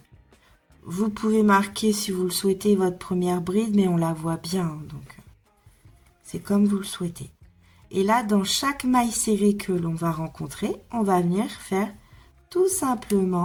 Vous pouvez marquer si vous le souhaitez votre première bride, mais on la voit bien, donc c'est comme vous le souhaitez. Et là, dans chaque maille serrée que l'on va rencontrer, on va venir faire tout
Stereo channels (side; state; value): both; identical; correlation 1.00